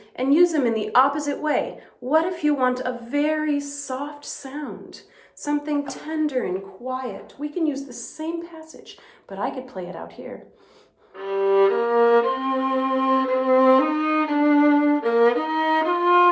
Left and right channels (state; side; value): identical; both; correlation 1.00